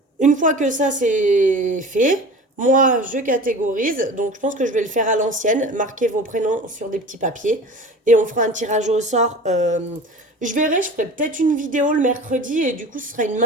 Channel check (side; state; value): both; normal; correlation 0.38